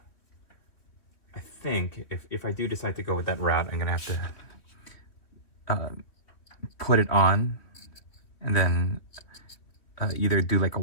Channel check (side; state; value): right; late; 3.1 ms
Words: I think if I do decide to go with that route, I'm gonna have to put it on and then either do like a